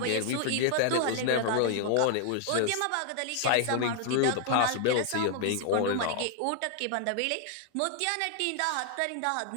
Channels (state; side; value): different; both; correlation 0.00